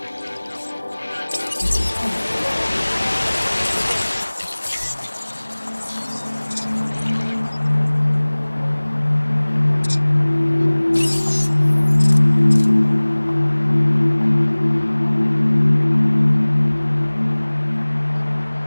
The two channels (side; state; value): both; inverted; correlation -1.00